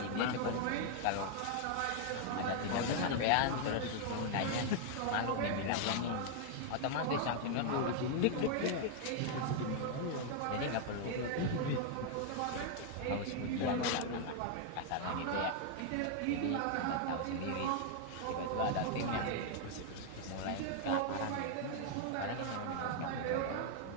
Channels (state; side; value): different; both; correlation 0.00